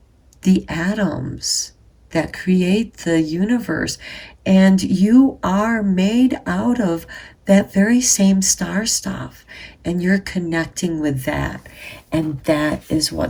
the atoms that create the universe. And you are made out of that very same star stuff. And you're connecting with that. And that is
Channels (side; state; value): both; identical; correlation 1.00